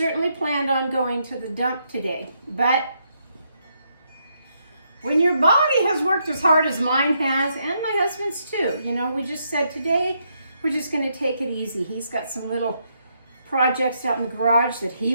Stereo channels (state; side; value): inverted; both; correlation -0.77